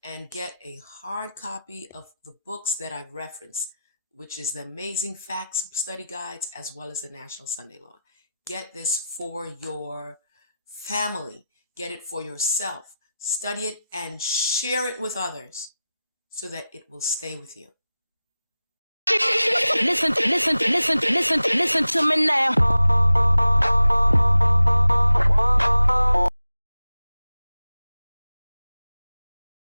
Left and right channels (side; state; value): both; inverted; correlation -0.93